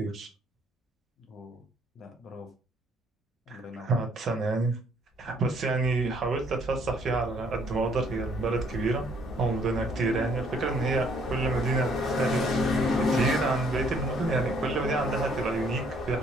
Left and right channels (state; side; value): normal; both; correlation 0.64